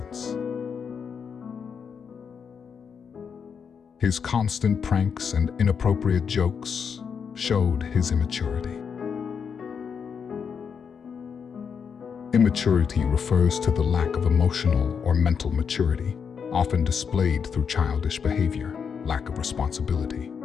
His constant pranks and inappropriate jokes showed his immaturity. Immaturity refers to the lack of emotional or mental maturity, often displayed through childish behavior, lack of responsibility,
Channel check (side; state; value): right; quieter; 6.6 dB